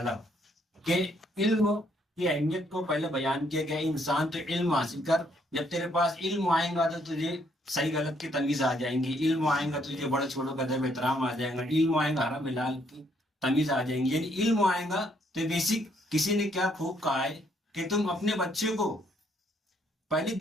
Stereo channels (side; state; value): both; normal; correlation 0.70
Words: کہ علم کی اہمیت کو پہلے بیان کیا گیا۔ انسان تو علم حاصل کر، جب تیرے پاس علم آئے گا تو تجھے صحیح غلط کی تمیز آ جائیں گی، علم آئے گا تجھے بڑے چھوٹوں کا ادب احترام آ جائے گا، علم آئے گا حرام حلال کی تمیز آ جائیں گی۔ یعنی علم آئے گا تو بیسک کسی نے کیا خوب کہا ہے کہ تم اپنے بچے کو پہلے